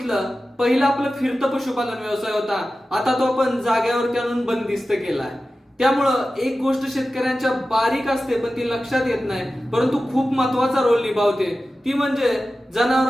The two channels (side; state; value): both; normal; correlation 0.94